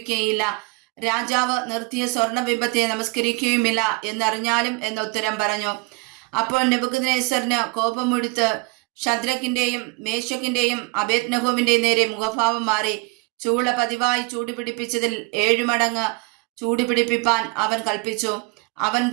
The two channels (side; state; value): left; quieter; 27.8 dB